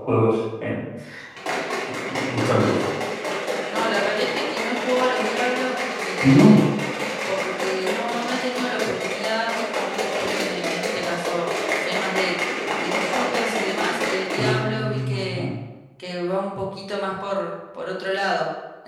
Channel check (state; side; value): identical; both; correlation 1.00